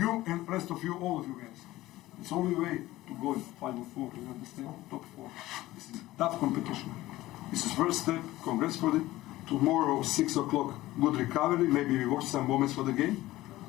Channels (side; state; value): right; quieter; 16.8 dB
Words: and the rest of you, all of you guys. It's the only way to go in Final 4, you understand? Top 4. This is tough competition. This is first step. Congrats for it. Tomorrow, 6 o'clock, good recovery. Maybe we watch some moments for the game.